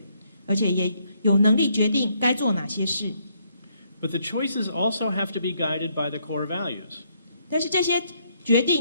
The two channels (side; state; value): both; inverted; correlation -0.72